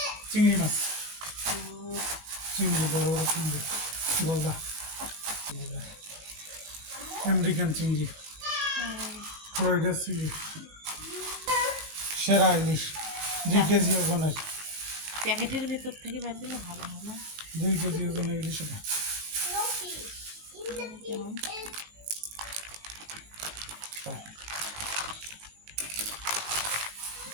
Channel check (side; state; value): left; late; 19 ms